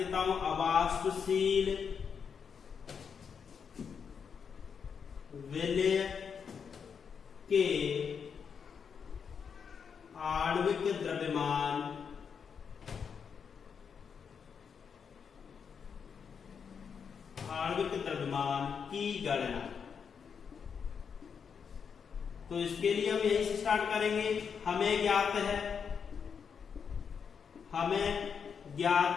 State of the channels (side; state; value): right; quieter; 6.6 dB